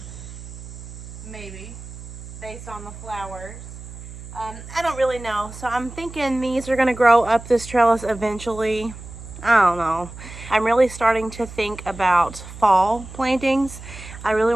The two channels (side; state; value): right; noise; hum, 14 dB below the sound